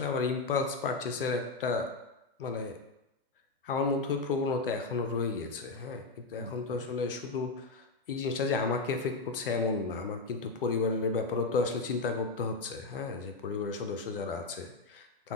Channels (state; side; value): quieter; right; 3.7 dB